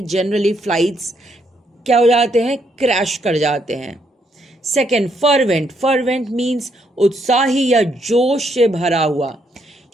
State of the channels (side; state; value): both; normal; correlation 0.74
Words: जनरली फ्लाइट्स क्या हो जाते हैं, क्रैश कर जाते हैं. सेकेंड फर्वेंट मीन्स उत्साही या जोश से भरा हुआ.